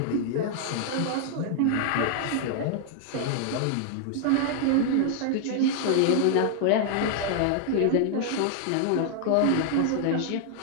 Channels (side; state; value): both; different; correlation 0.00